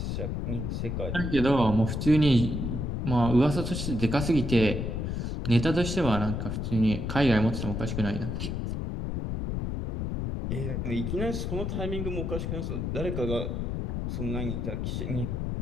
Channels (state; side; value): noise; left; rumble, 2 dB below the sound